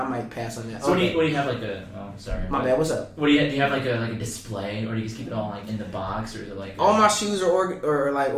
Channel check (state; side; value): identical; both; correlation 1.00